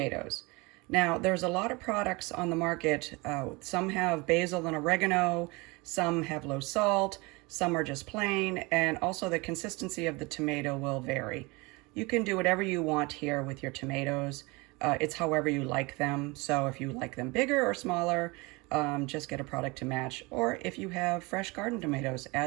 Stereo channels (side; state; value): left; quieter; 25.5 dB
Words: Now, there's a lot of products on the market. Some have basil and oregano, some have low salt, some are just plain, and also the consistency of the tomato will vary. You can do whatever you want here with your tomatoes. It's however you like them. So if you like them bigger or smaller, just get a product to match. Or if you have fresh garden tomatoes,